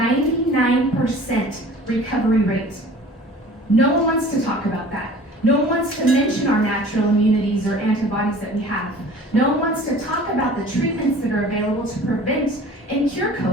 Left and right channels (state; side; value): normal; both; correlation 0.45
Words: recovery rate. No one wants to talk about that. No one wants to mention our natural immunities or antibodies that we have. No one wants to talk about the treatments that are available to prevent and cure